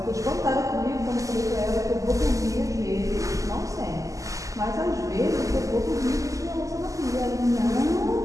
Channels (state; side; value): late; left; 0.16 ms